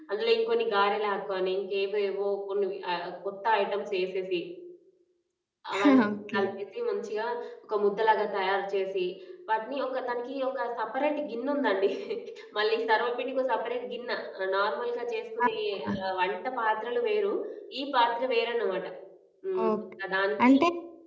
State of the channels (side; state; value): both; identical; correlation 1.00